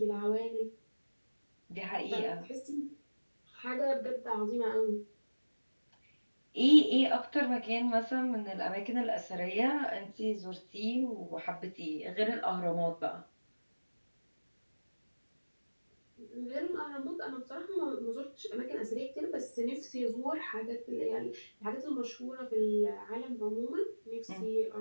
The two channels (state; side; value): inverted; both; correlation -1.00